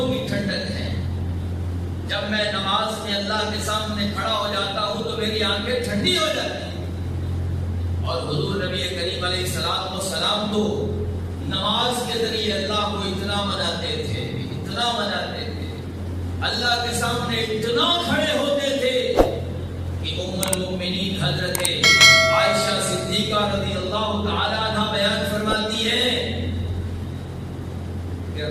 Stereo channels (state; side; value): identical; both; correlation 1.00